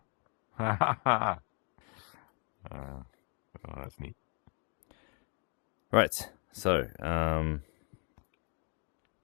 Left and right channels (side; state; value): right; quieter; 38.0 dB